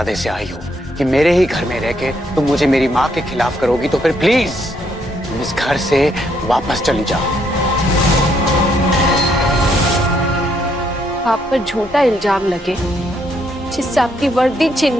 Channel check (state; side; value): normal; both; correlation 0.73